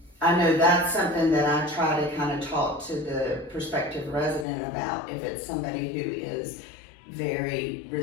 I know that's something that I try to kind of talk to the prospective resident about if it's somebody who is very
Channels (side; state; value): right; drops out; at 4.5 s